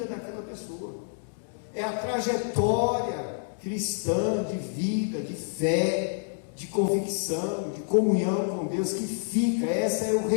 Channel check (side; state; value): right; silent; digital silence